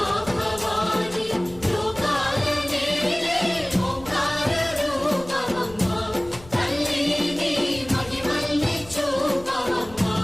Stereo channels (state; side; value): noise; left; rumble, 20 dB below the sound